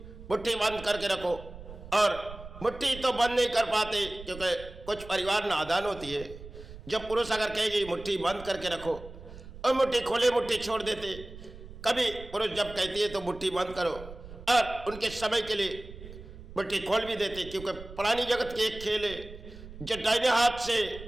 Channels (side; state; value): right; noise; rumble, 15 dB below the sound